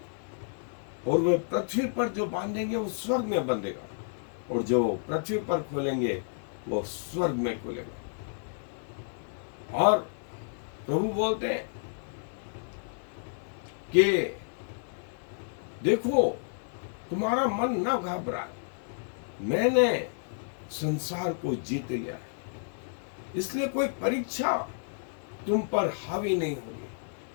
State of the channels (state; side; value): silent; right; digital silence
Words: और वे पृथ्वी पर जो बांधेंगे वो स्वर्ग में बंधेगा, और जो पृथ्वी पर खोलेंगे वो स्वर्ग में खोलेगा। और प्रभु बोलते हैं कि देखो तुम्हारा मन न घबराए, मैंने संसार को जीत लिया है, इसलिए कोई परीक्षा तुम पर हावी नहीं होगी।